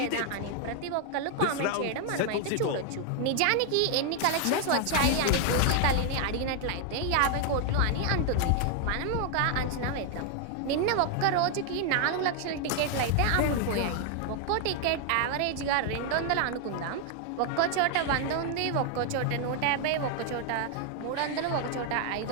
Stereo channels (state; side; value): different; both; correlation 0.00